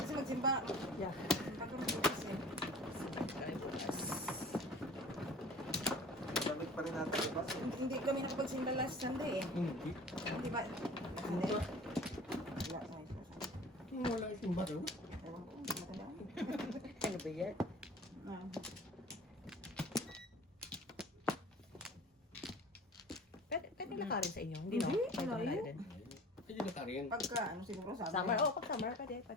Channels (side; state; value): both; normal; correlation 0.43